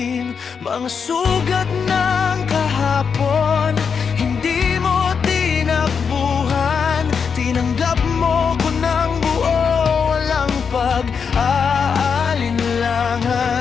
Mga sugat ng kahapon, hindi mo tinakbuhan. Tinanggap mo ko ng buo, walang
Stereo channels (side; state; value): right; quieter; 6.2 dB